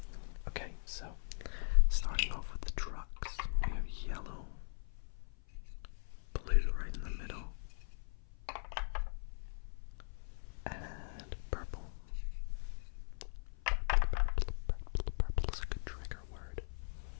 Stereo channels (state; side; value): silent; right; 51 dB below the other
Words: Okay, so starting off with the trucks, we have yellow, blue right in the middle, and purple. Purple is a good trigger word.